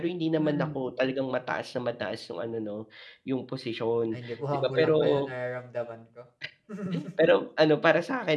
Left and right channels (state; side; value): identical; both; correlation 1.00